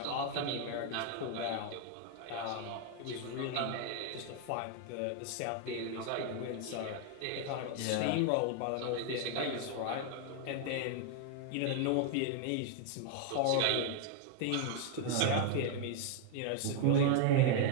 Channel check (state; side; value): different; both; correlation 0.00